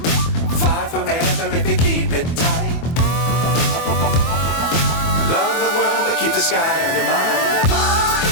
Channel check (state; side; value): late; right; 24 ms